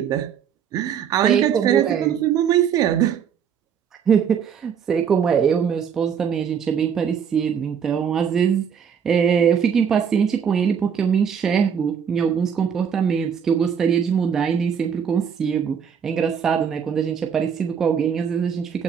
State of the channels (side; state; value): left; quieter; 7.6 dB